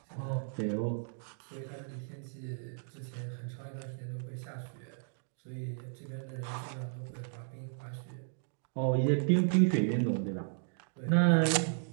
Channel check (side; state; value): left; silent; digital silence